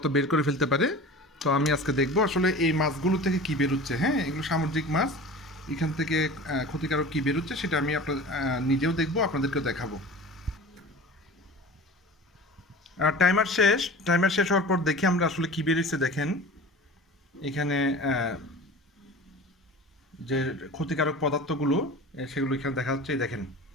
বের করে ফেলতে পারে। তো আমি আজকে দেখব আসলে এই মাছগুলো থেকে কি বেরোচ্ছে। হ্যাঁ, এগুলো সামুদ্রিক মাছ, এখান থেকে ক্ষতিকারক কি বেরোচ্ছে সেটা আমি আপনার নিজেও দেখব, আপনাদেরকেও দেখাবো। টাইমার শেষ হওয়ার পর দেখি আমরা আসলে কি বেরিয়েছে। দেখেন এখানে যে ক্ষতিকারক পদার্থগুলো সেগুলো এখানে দেখা যাচ্ছে। এই দেখেন,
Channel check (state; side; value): normal; both; correlation 0.37